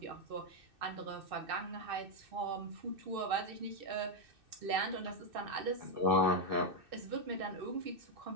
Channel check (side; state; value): left; late; 2.6 ms